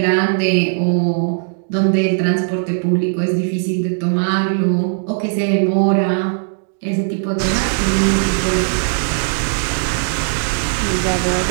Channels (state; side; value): silent; left; digital silence